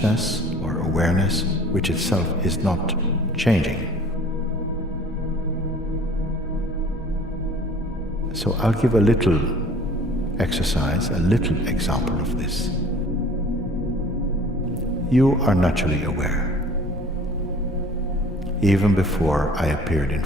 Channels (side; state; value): both; normal; correlation 0.49